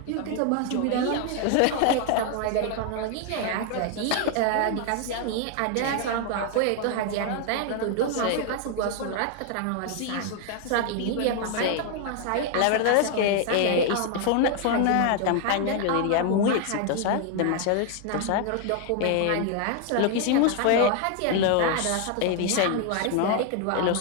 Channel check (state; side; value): different; both; correlation 0.00